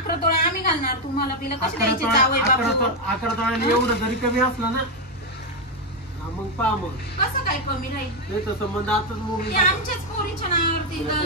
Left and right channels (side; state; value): both; normal; correlation 0.04